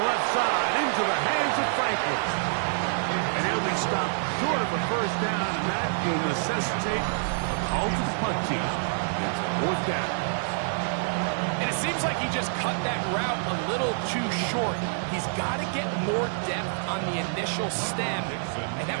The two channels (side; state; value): left; silent; digital silence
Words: left side, into the hands of Franklin. And he'll be stopped short of a first down, and that will necessitate a call to the punt team. It's 4th down. And it seems like he just cut that route a little too short. He's got to get more depth on the initial stem, and